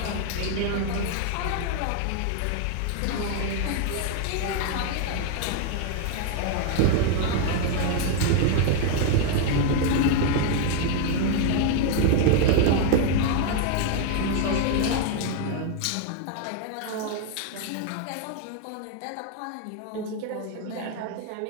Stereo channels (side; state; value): both; different; correlation 0.00